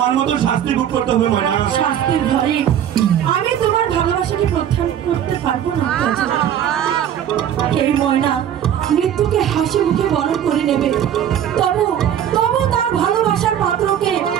মতো শাস্তি ভোগ করতে হবে ময়না। শাস্তির ভয়ে আমি তোমার ভালোবাসাকে প্রত্যাখ্যান করতে পারবো না কাজল। এই ময়না মৃত্যুকে হাসি মুখে বরণ করে নেবে, তবু তবু তার ভালোবাসার পাত্রকে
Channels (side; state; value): left; quieter; 9.9 dB